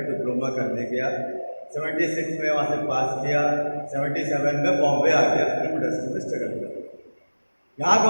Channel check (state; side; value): inverted; both; correlation -1.00